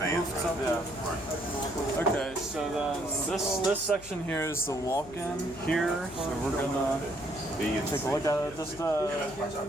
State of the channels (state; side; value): noise; left; hum, 18 dB below the sound